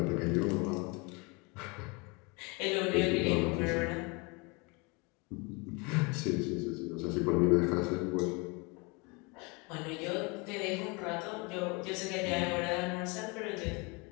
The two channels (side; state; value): right; quieter; 29.1 dB